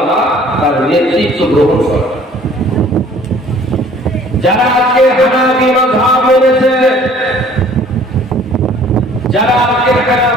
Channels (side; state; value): both; normal; correlation 0.54